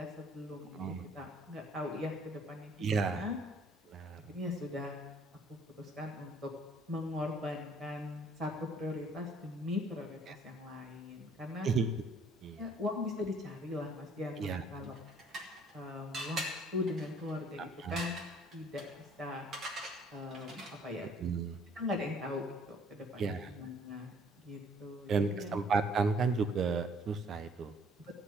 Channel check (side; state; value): both; normal; correlation 0.59